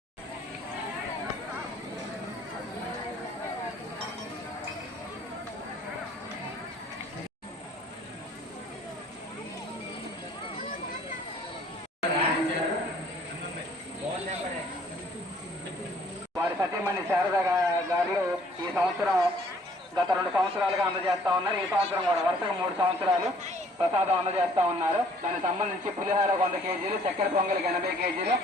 వారి సతీమణి శారద గారు ఈ సంవత్సరం గత 2 సంవత్సరాలుగా అందజేస్తా ఉన్నారు. ఈ సంవత్సరం కూడా వరుసగా 3 సంవత్సరాలు ప్రసాదం అందజేస్తా ఉన్నారు. దానికి సంబంధించి పులిహార 100 కేజీలు, చక్కెర పొంగలికి 80 కేజీలు,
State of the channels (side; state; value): both; normal; correlation 0.59